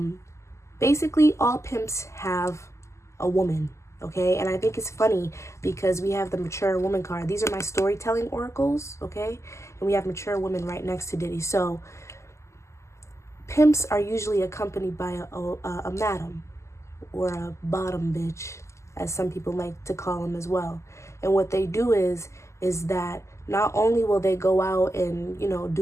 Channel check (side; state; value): right; late; 0.13 ms